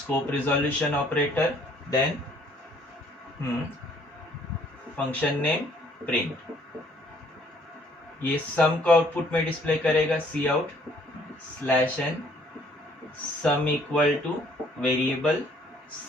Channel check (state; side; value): normal; both; correlation 0.62